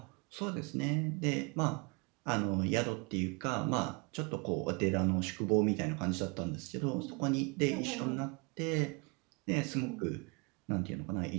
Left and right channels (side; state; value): left; quieter; 30.5 dB